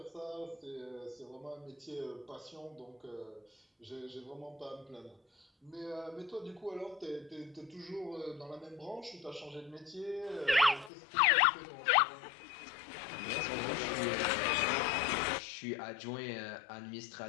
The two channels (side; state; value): right; drops out; at 10.9 s